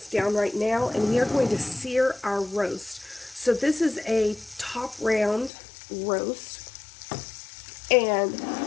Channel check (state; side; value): drops out; right; at 5.5 s